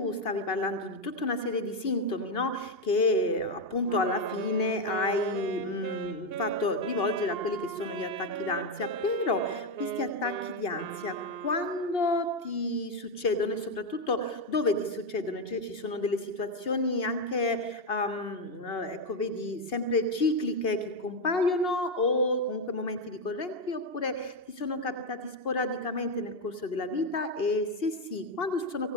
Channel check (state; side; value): late; right; 2.8 ms